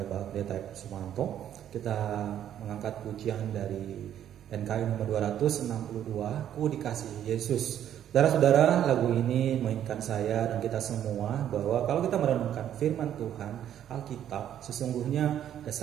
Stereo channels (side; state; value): left; quieter; 10.5 dB